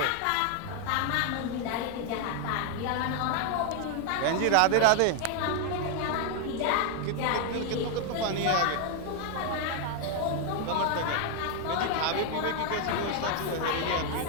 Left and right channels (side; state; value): both; different; correlation 0.01